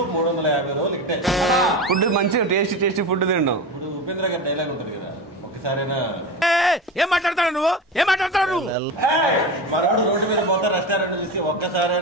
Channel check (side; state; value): both; normal; correlation 0.24